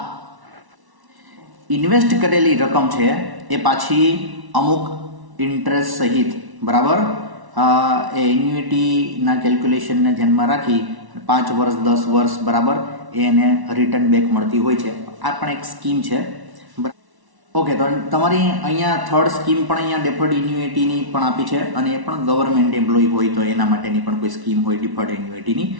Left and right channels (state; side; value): late; left; 1.1 ms